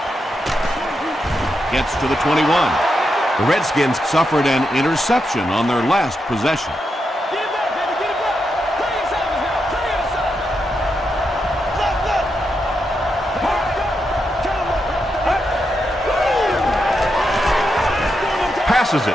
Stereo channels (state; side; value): normal; both; correlation 0.84